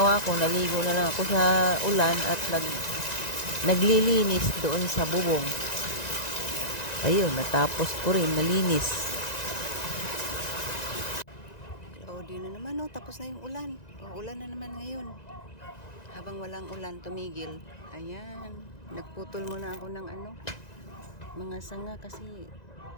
ko, naligo na lang ako sa ulan at naglilinis doon sa bubong. Ayun, natapos ko rin, nalinis. Cloudy na naman, oh. Tapos na yung ulan. Ulan na naman ngayon. Habang walang ulan, tumigil. Ayan. Nagputol muna ako ng mga sanga kasi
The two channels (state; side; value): late; right; 1.9 ms